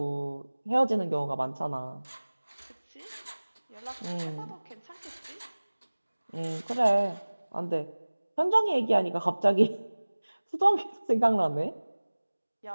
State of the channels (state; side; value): inverted; both; correlation -1.00